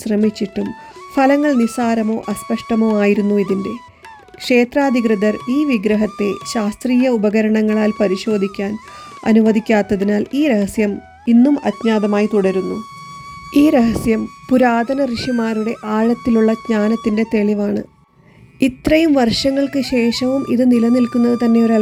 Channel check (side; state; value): both; identical; correlation 1.00